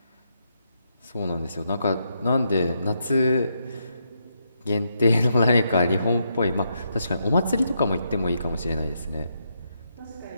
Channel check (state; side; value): inverted; both; correlation -0.80